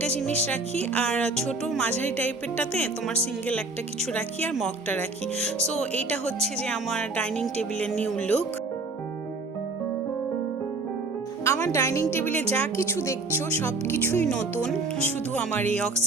জিনিস রাখি, আর ছোট মাঝারি টাইপেরটাতে তোমার সিঙ্গেল একটা কিছু রাখি, আর মগটা রাখি। সো এইটা হচ্ছে যে আমার ডাইনিং টেবিলের নিউ লুক। আমার ডাইনিং টেবিলে যা কিছু দেখছো সব কিছুই নতুন, শুধু আমার এই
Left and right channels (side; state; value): left; quieter; 3.5 dB